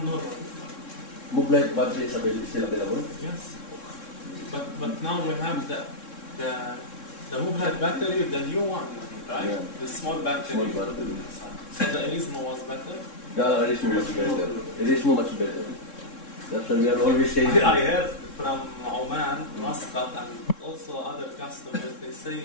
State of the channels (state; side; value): late; right; 3.7 ms